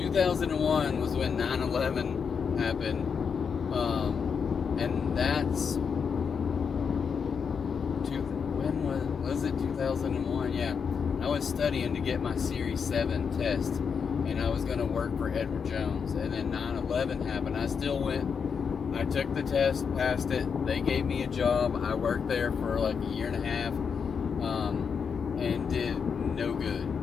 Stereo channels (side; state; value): right; quieter; 6.3 dB